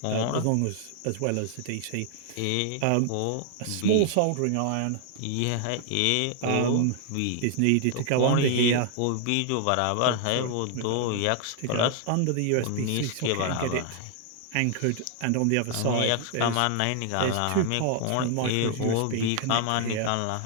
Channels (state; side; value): different; both; correlation 0.00